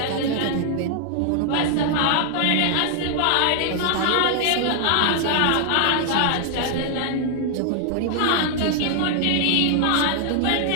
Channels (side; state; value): both; different; correlation 0.00